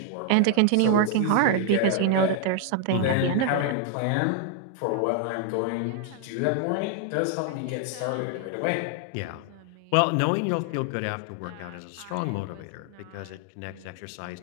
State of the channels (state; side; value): different; both; correlation 0.00